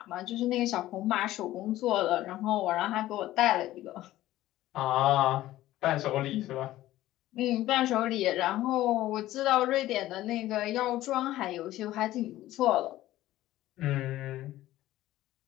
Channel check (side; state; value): right; quieter; 15.1 dB